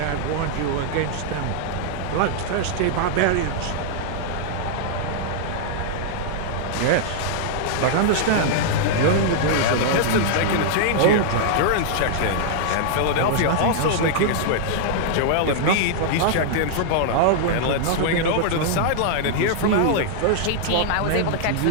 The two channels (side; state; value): both; different; correlation -0.01